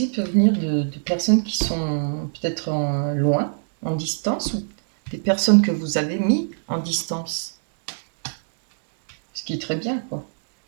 peuvent venir de personnes qui sont peut-être loin, en distance, ou des personnes que vous avez mis en distance. Ce qui est très bien, quoi.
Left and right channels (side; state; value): left; silent; 64 dB below the other